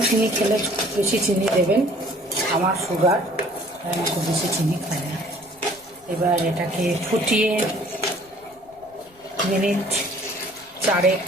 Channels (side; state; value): left; noise; rumble, 29 dB below the sound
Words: চিনি খেলে বেশি চিনি দেবেন। আমার সুগার, আমি খুব বেশি চিনি খাই না। এবার এটাকে ফুটিয়ে মিনিট 4